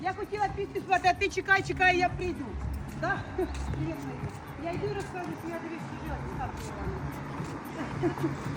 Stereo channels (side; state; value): both; identical; correlation 1.00